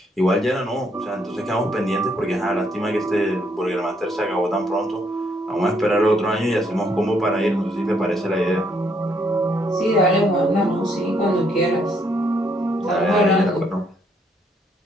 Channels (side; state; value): both; normal; correlation 0.71